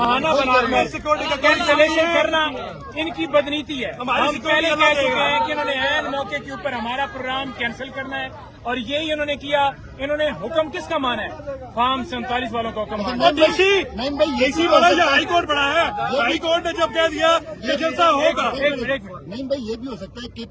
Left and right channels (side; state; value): both; identical; correlation 1.00